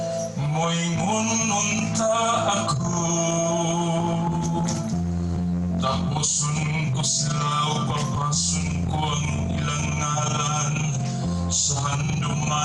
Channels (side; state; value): both; identical; correlation 1.00